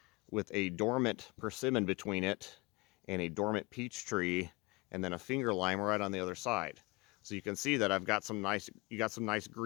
dormant persimmon between it and a dormant peach tree and then a finger lime right on the other side. So you can see that I've got you got some nice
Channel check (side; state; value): right; quieter; 25.6 dB